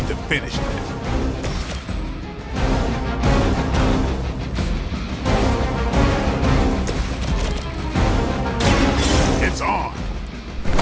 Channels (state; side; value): identical; both; correlation 1.00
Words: to finish this. It's on.